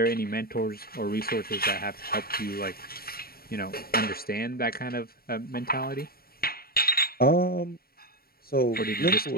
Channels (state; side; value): late; right; 0.44 ms